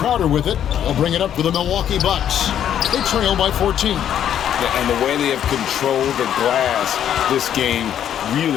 with it. They'll bring it up for the Milwaukee Bucks. They trail by 14. Yeah, and the way they have controlled the glass this game,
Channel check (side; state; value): right; quieter; 10.0 dB